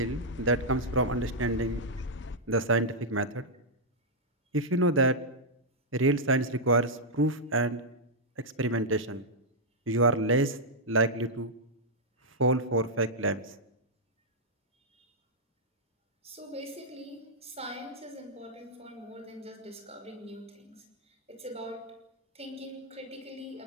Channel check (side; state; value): both; normal; correlation -0.06